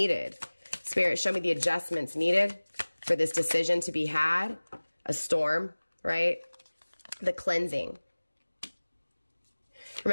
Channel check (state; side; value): inverted; both; correlation -1.00